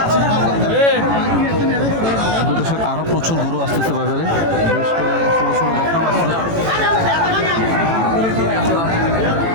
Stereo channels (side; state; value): left; late; 18 ms